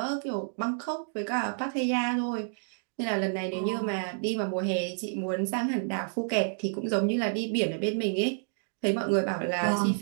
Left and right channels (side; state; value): left; silent; digital silence